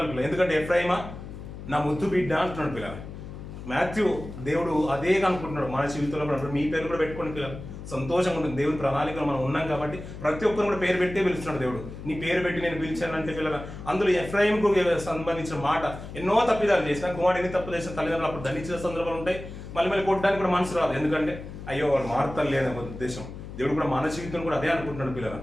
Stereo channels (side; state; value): left; noise; hum, 11 dB below the sound